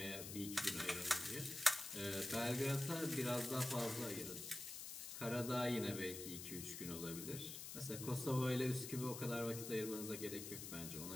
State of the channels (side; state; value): left; noise; hiss, 7 dB below the sound